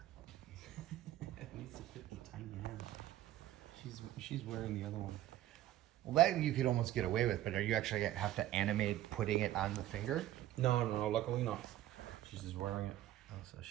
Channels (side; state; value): left; quieter; 13.9 dB